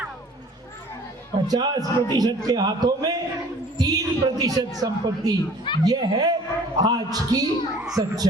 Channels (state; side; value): normal; both; correlation 0.50